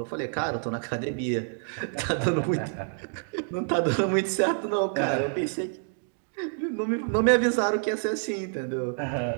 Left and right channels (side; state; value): left; silent; 58 dB below the other